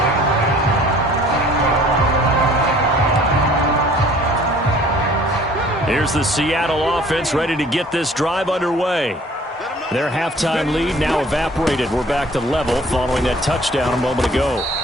Here's the Seattle offense ready to get this drive underway. Their halftime lead now evaporated. We're back to level following that touchdown a moment ago.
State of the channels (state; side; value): normal; both; correlation 0.53